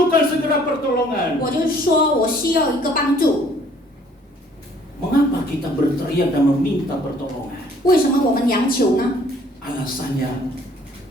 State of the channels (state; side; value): normal; both; correlation 0.59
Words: segera pertolongan. 我就说我需要一个帮助。 Mengapa kita berteriak dan meminta pertolongan? 为什么我们央求呢？ Alasannya